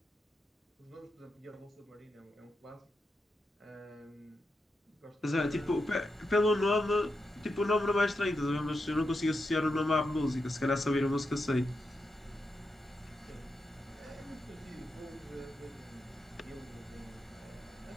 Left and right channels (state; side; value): normal; both; correlation 0.86